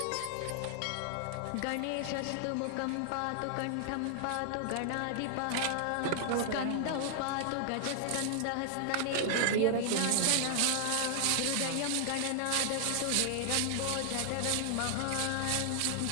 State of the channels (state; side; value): different; both; correlation 0.00